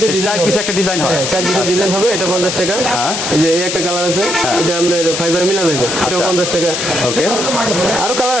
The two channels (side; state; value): left; noise; hiss, 3 dB below the sound